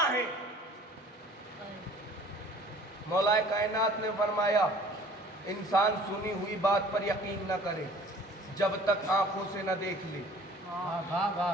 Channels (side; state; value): both; normal; correlation 0.50